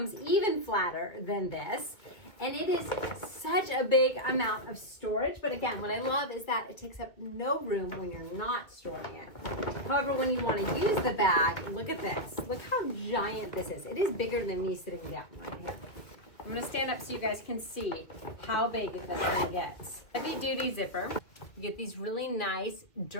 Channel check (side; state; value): right; late; 2.1 ms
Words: even flatter than this. And it is such a big amount of storage. But again, what I love is that it takes up no room when you're not storing it. However, when you want to use the bag, look at this. Look how giant this is. It is bigger than me sitting down right here. I'm going to stand up so you guys can see how big this thing gets. Heavy duty zipper. You get these really nice